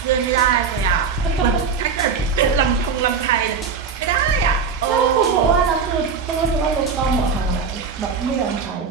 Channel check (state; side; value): quieter; left; 5.7 dB